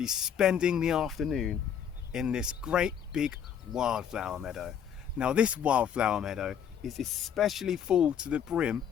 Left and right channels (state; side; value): quieter; right; 8.5 dB